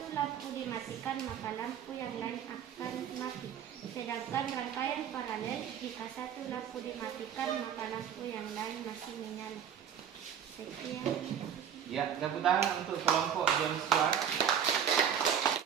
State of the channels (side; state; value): left; quieter; 8.7 dB